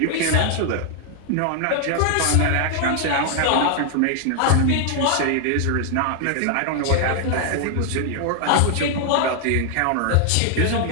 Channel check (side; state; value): both; different; correlation 0.00